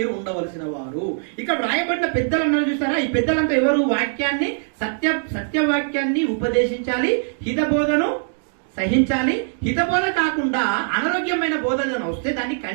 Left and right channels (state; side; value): silent; left; digital silence